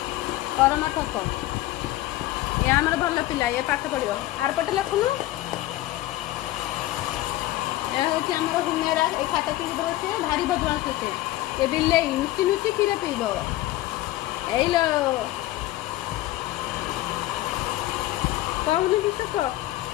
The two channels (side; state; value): right; quieter; 16.4 dB